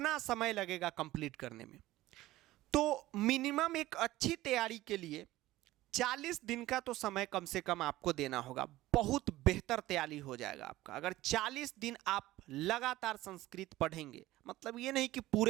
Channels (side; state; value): left; quieter; 16.7 dB